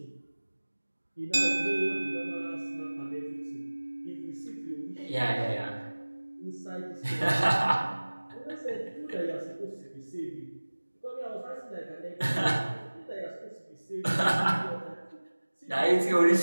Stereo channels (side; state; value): both; inverted; correlation -1.00